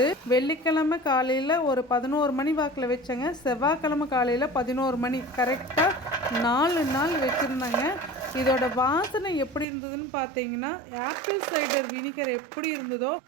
வெள்ளிக்கிழமை காலையில் ஒரு 11 மணி வாக்கில் வச்சேங்க. செவ்வாய்க்கிழமை காலையில் 11 மணி, கரெக்டாக 4 நாள் வச்சுருந்தேங்க. இதோட வாசனை எப்படி இருந்ததுன்னு பார்த்தீங்கன்னா, ஆப்பிள் சைடர் வினிகர் எப்படி இருந்ததோ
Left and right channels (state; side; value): drops out; left; at 9.7 s